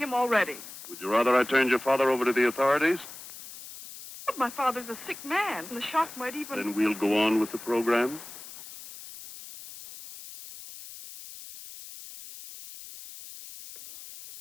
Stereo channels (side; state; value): left; noise; hiss, 14 dB below the sound